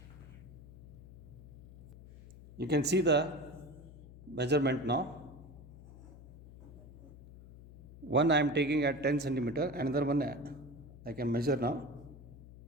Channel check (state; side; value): noise; left; hum, 17 dB below the sound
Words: You can see the measurement now. One I am taking at 10 centimeter, another one I can measure now.